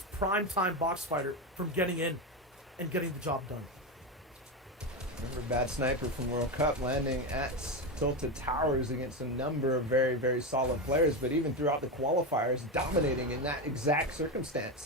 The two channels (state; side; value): normal; both; correlation 0.14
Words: prime-time box fighter from getting in and getting the job done? Remember Bad Sniper from World Cup landing at Tilted Towers against a number of very, very solid players, but even throughout the qualifiers, dominating in that exact